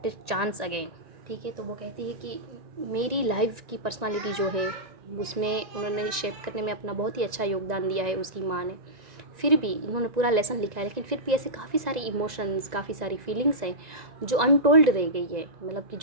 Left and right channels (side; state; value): left; late; 1.9 ms